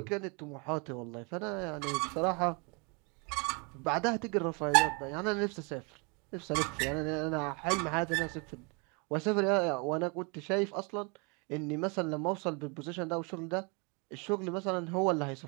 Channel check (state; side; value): quieter; left; 32.2 dB